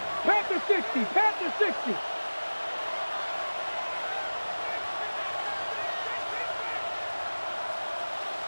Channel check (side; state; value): both; inverted; correlation -1.00